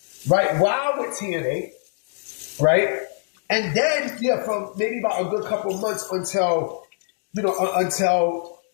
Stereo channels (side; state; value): right; silent; digital silence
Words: right, while with TNA, right? And then, from maybe about a good couple of months until his